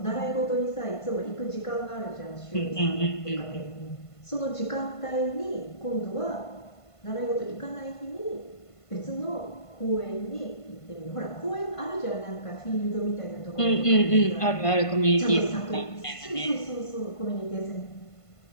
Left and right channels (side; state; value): right; late; 1.5 ms